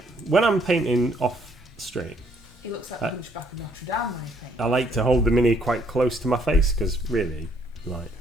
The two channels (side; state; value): both; normal; correlation 0.67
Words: When I'm painting off stream, He looks like the Hunchback of Notre Dame when he paints. I like to hold the mini quite close to my face because really, like,